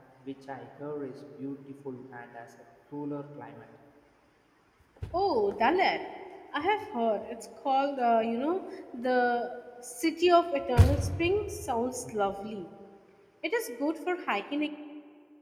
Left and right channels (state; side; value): identical; both; correlation 1.00